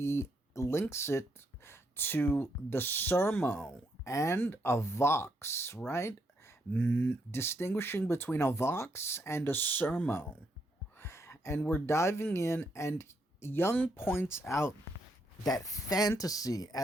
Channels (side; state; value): both; normal; correlation 0.76